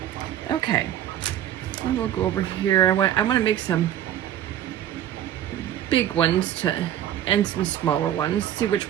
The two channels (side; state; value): left; quieter; 11.3 dB